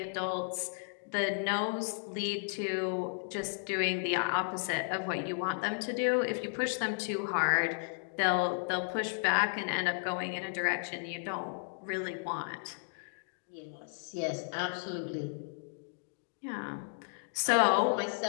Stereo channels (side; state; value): right; silent; digital silence